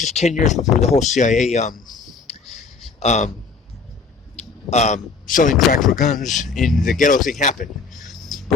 is 10 years before the whole CIA selling crack for guns in the ghetto thing happened.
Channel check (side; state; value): right; quieter; 4.7 dB